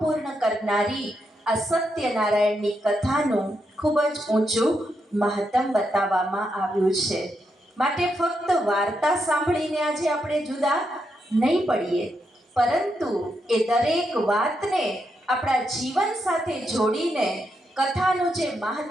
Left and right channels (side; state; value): both; normal; correlation 0.82